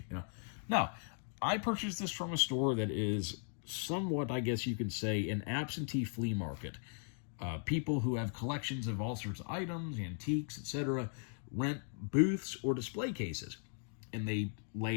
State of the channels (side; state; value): right; silent; 53 dB below the other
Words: No. I purchased this from a store that is somewhat, I guess you could say, an absentee flea market. People who have collections of all sorts of items, antiques, etc., rent booths or display cases. And they